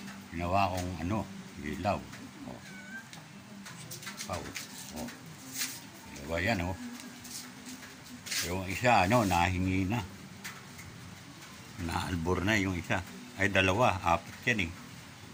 Ginawa kong ano, ilaw. Oh. Pau. Oh. Diba yan, oh. Yung isa, ano, nahingi na. Naalbor na yung isa. Ay, dalawa. Apat yan, eh.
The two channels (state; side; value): identical; both; correlation 1.00